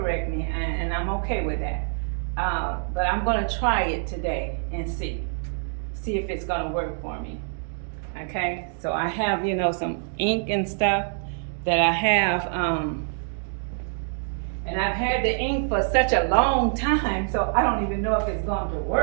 me, and I'm okay with that. But I'm gonna try it today and see if it's gonna work for me. Okay, so I have, you know, some ink and stuff that I have, and I've had the ink for such a long time, so I don't even know if it's going to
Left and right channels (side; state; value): left; silent; 60 dB below the other